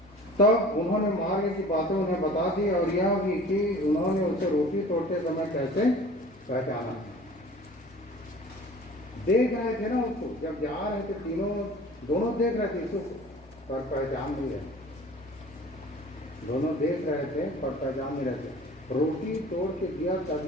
तब उन्होंने मार्ग की बातें उन्हें बता दी और यह भी कि उन्होंने उसे रोटी तोड़ते समय कैसे पहचाना। देख रहे थे ना उसको, जब जा रहे थे तीनों दोनों देख रहे थे यीशु को पर पहचान नहीं रहे। दोनों देख रहे थे पर पहचान नहीं रहे थे। रोटी तोड़ के दिया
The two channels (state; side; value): normal; both; correlation 0.45